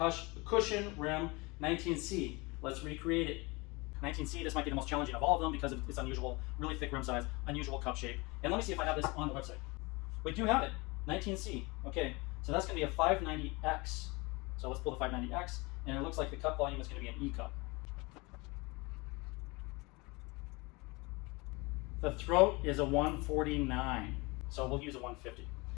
rim 19C. Let's recreate it. 19C, this might be the most challenging of all of them because of its unusual, really thick rim size, unusual cup shape. And let me see if I have this on the website. We do have it, 19C. Okay, so that's going to be a 590X. So let's pull the 590X, and it looks like the cup volume is going to be an E cup. The throat is a 149, so we'll use a 150.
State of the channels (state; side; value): quieter; right; 25.6 dB